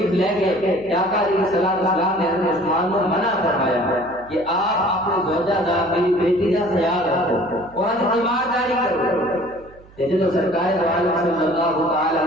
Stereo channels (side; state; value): right; noise; hum, 24 dB below the sound